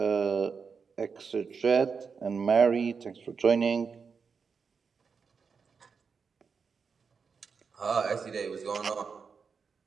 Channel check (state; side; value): quieter; left; 5.6 dB